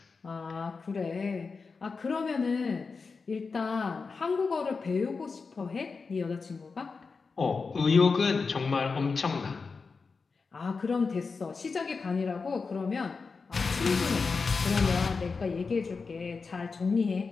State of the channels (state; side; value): quieter; right; 4.7 dB